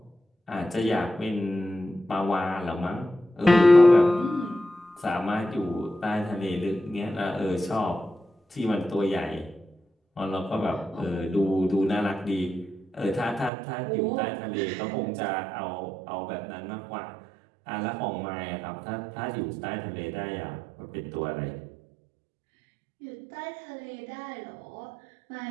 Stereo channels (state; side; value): drops out; left; at 13.5 s